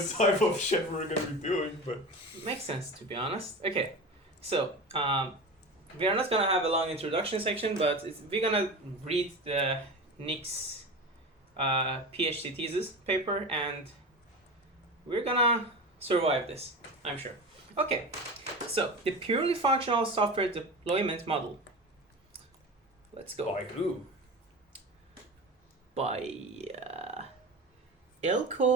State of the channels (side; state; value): both; normal; correlation 0.29